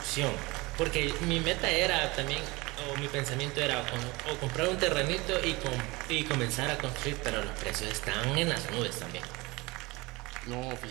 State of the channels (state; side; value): quieter; left; 23.4 dB